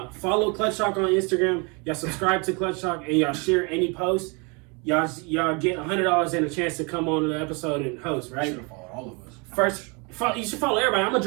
follow Clutch Talk on Instagram. Y'all subscribe to Clutch Talk and y'all share any post. Y'all get $100 and a chance to come on the episode and host, You right? should have followed all of us. First, you should follow everybody. I'm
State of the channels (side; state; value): left; quieter; 31.4 dB